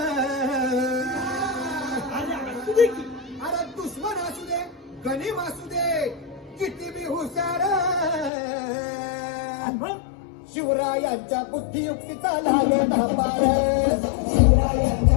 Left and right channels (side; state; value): right; drops out; at 8.3 s